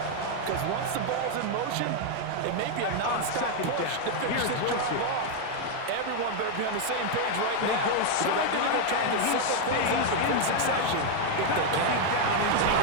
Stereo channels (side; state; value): both; different; correlation 0.01